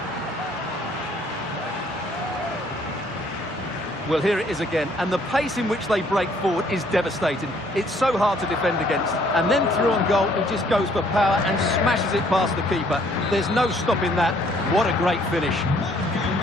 Well, here it is again, and the pace in which they break forward is devastating. It's so hard to defend against. And then through on goal, he just goes for power and smashes it past the keeper. There's no stopping that. What a great finish.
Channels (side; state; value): both; normal; correlation 0.63